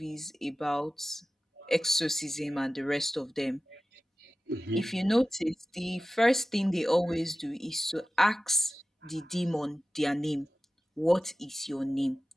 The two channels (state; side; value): normal; both; correlation 0.96